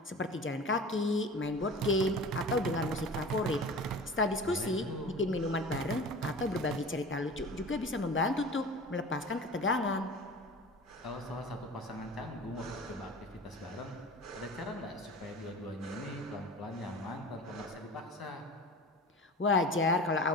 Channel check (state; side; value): normal; both; correlation 0.37